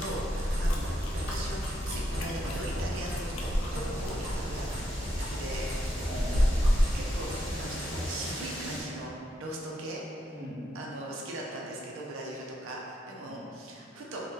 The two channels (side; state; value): both; normal; correlation 0.79